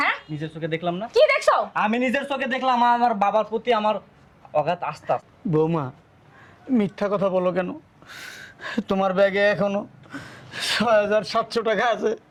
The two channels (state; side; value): identical; both; correlation 1.00